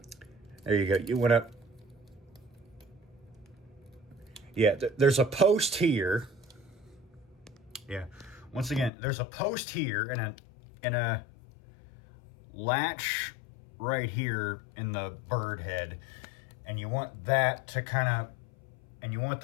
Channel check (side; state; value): right; drops out; at 8.9 s